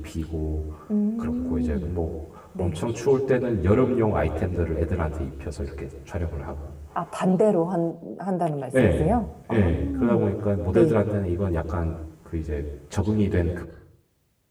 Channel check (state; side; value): identical; both; correlation 1.00